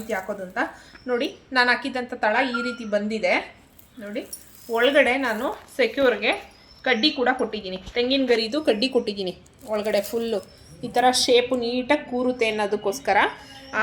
ಹಾಕೋದು ಅಂತ. ನೋಡಿ, ನಾನು ಹಾಕಿದ್ದಂಥ ತಳ ಈ ರೀತಿ ಬಂದಿದೆ ನೋಡಿ. ಒಳಗಡೆ ನಾನು ಸೆಕ್ಯೂರ್ಗೆ ಕಡ್ಡಿ ಕೂಡ ಕೊಟ್ಟಿದ್ದೀನಿ, ತೆಂಗಿನ ಗರಿದು ಕಡ್ಡಿ ಕೊಟ್ಟಿದ್ದೀನಿ ಒಳಗಡೆ. ಫುಲ್ಲು ಈ ಥರ ಶೇಪು ನೀಟಾಗಿ ಕೂರುತ್ತೆ ಅನ್ನೋದಕ್ಕೋಸ್ಕರ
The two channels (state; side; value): identical; both; correlation 1.00